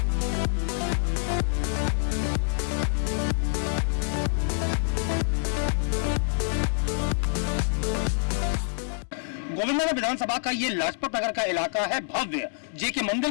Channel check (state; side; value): silent; right; 61 dB below the other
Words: गोविंदनगर विधानसभा का ये लाजपत नगर का इलाका है भव्य। जेके मंदिर